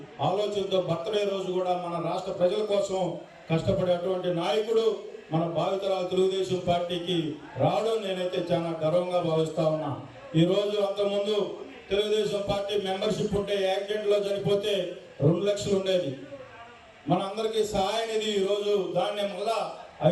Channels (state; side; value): identical; both; correlation 1.00